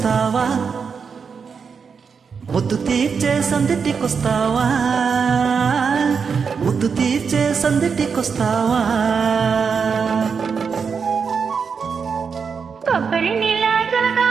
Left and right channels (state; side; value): quieter; left; 5.9 dB